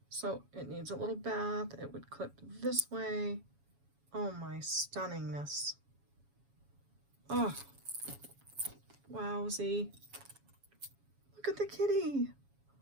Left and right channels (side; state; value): left; late; 7.2 ms